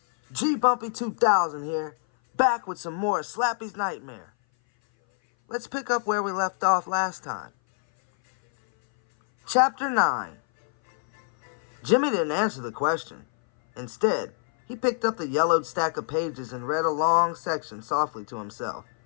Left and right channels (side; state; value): right; silent; 58 dB below the other